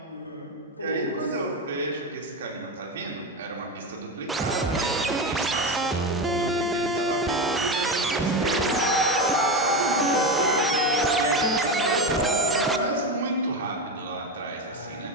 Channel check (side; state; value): both; normal; correlation 0.18